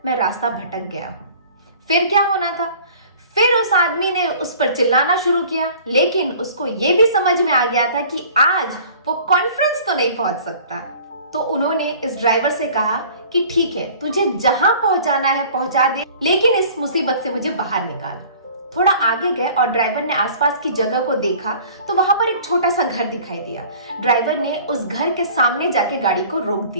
मैं रास्ता भटक गया हूं। फिर क्या होना था, फिर उस आदमी ने उस पर चिल्लाना शुरू किया, लेकिन उसको ये भी समझ में आ गया था कि आज वो कॉन्फ्रेंस तो नहीं पहुंच सकता। तो उन्होंने इस ड्राइवर से कहा कि ठीक है, तुझे जहां पहुंचाना है पहुंचा दे, लेकिन इस मुसीबत से मुझे बाहर निकाल। थोड़ा आगे गए और ड्राइवर ने आसपास की जगह को देखा तो वहां पर एक छोटा सा घर दिखाई दिया। ड्राइवर ने उस घर के सामने जाके गाड़ी को रोक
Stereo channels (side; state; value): both; inverted; correlation -0.48